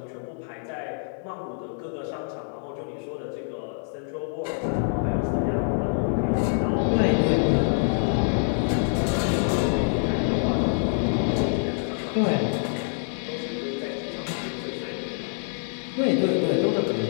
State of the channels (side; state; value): right; silent; digital silence